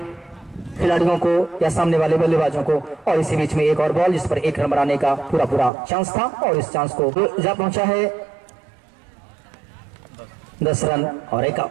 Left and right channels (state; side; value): drops out; left; at 5.7 s